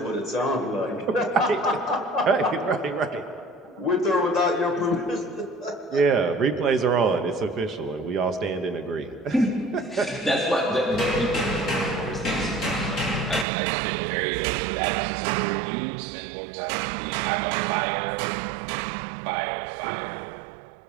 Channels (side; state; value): left; drops out; at 13.5 s